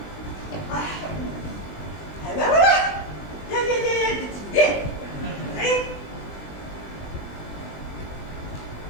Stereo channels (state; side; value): late; right; 20 ms